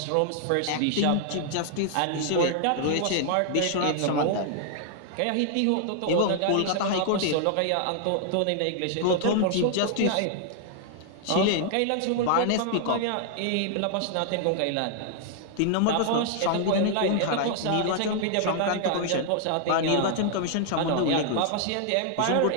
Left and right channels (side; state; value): both; different; correlation 0.00